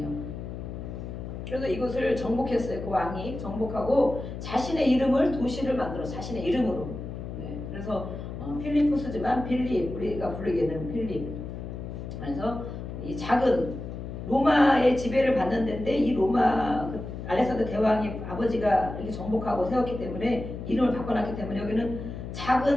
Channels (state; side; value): noise; left; hum, 8 dB below the sound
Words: 그래서 이곳을 정복했어요. 그 왕이 정복하고 자신의 이름을, 도시를 만들어 자신의 이름으로. 네. 그래서 필리포스지만 빌립, 우리가 부르기에는 필립. 그래서 이 작은 로마의 지배를 받는 데인데, 이 로마 알렉산더 대왕이 아버지가 이렇게 정복하고 세웠기 때문에 이름을 바꿔놨기 때문에 여기는